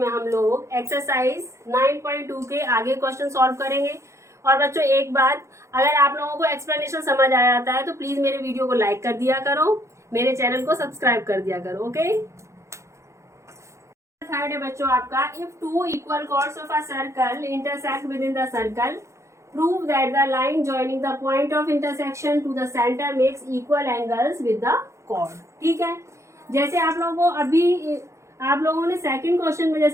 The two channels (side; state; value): left; late; 0.14 ms